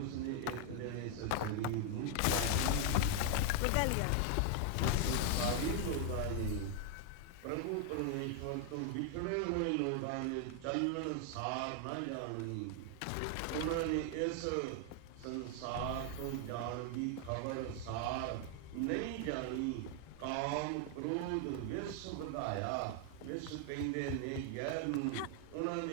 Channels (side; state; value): both; different; correlation 0.00